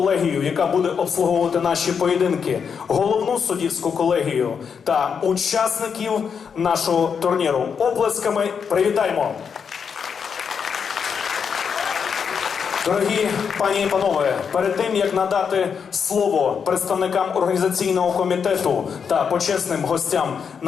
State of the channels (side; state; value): right; quieter; 6.6 dB